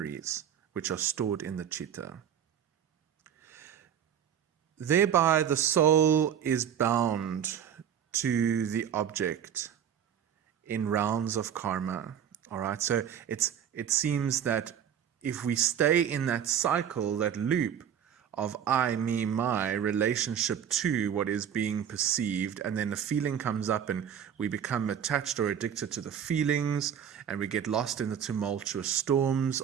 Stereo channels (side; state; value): left; quieter; 8.9 dB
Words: which are stored in the chitta. Thereby, the soul is bound to the object in rounds of karma. All right, so it seems that if we stay in that cycle, that loop of I, me, my relationship to what is being perceived, and then a feeling comes up and we become attached or addicted to the feelings, and we get lost in the tumultuous storms